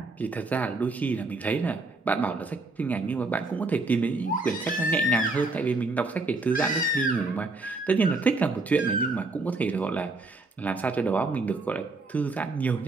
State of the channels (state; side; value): quieter; left; 3.3 dB